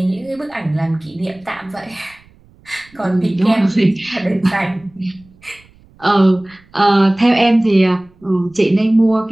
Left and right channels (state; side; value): noise; right; rumble, 29 dB below the sound